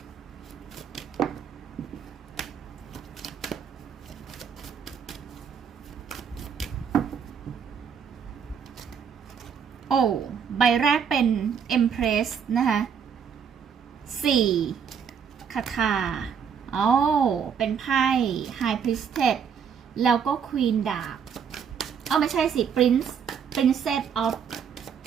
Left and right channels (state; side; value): quieter; left; 7.2 dB